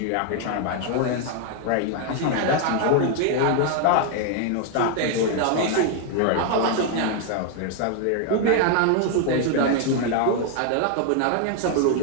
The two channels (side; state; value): both; different; correlation 0.00